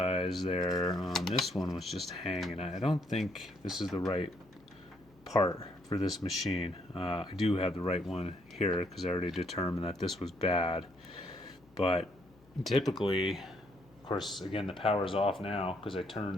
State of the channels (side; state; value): left; noise; hum, 28 dB below the sound